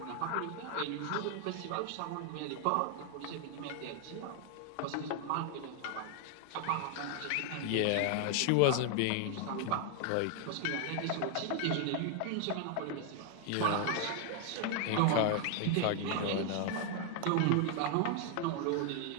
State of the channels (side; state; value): both; different; correlation 0.00